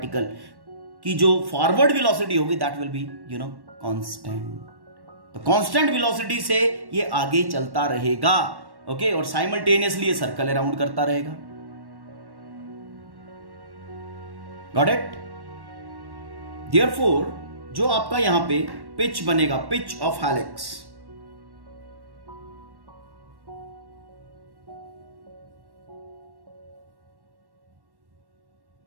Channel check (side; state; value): left; late; 1.1 ms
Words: की जो फॉरवर्ड वेलोसिटी होगी दैट विल बी कांस्टेंट. तो कांस्टेंट वेलोसिटी से ये आगे चलता रहेगा, ओके, और साइमल्टेनियसली ये सर्कल अराउंड करता रहेगा. Got it? देयरफॉर जो आपका यहां पे पिच बनेगा, pitch of helix,